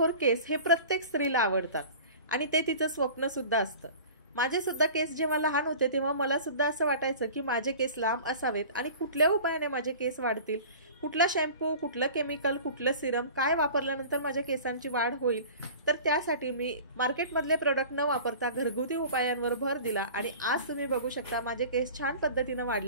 केस हे प्रत्येक स्त्रीला आवडतात आणि ते तिचं स्वप्न सुद्धा असतं. माझे सुद्धा केस जेव्हा लहान होते तेव्हा मला सुद्धा असं वाटायचं की माझे केस लांब असावेत आणि कुठल्या उपायाने माझे केस वाढतील, कुठला शॅम्पू, कुठलं केमिकल, कुठलं सिरम, काय वापरल्यानंतर माझ्या केसांची वाढ होईल. तर त्यासाठी मी मार्केटमधले प्रोडक्ट न वापरता घरगुती उपायांवर भर दिला आणि आज तुम्ही बघू शकता माझे केस छान पद्धतीनं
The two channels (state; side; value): inverted; both; correlation -0.41